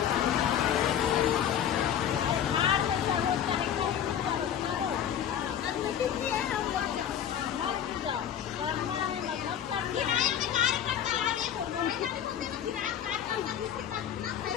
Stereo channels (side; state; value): right; quieter; 9.5 dB